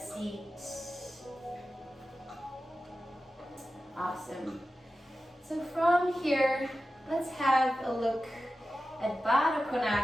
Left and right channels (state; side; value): normal; both; correlation 0.93